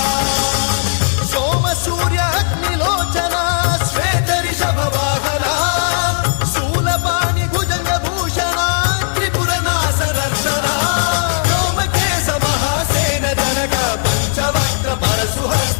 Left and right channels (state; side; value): silent; right; 69 dB below the other